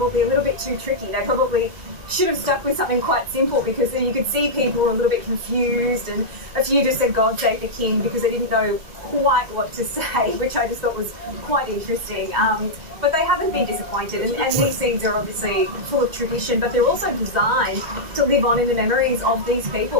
a little bit too tricky. They probably should have stuck with something quite simple, because then you could see people were a little bit confused, and a few just said God Save the King because they didn't know quite what to say, which I just thought was quite interesting. But they haven't been disappointed, and these scenes are obviously full of tradition, but they're also designed to live on in the memories of these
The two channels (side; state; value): left; late; 2.0 ms